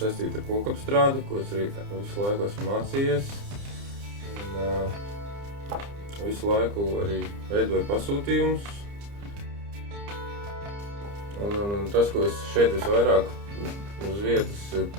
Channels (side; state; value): left; late; 30 ms